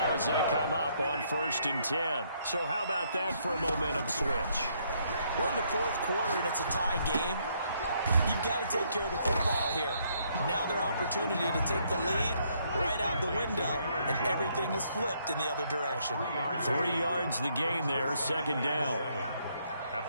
as they come up on 1st and 10. So how about that for a momentum switch? We're in the 4th quarter, and it's a tie game. You've got to take care of the football here. Now their opportunity to take the lead right out the window, and everything is flipped in the other direction. 3 yards the gain there, 2nd down. At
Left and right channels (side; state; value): both; inverted; correlation -0.71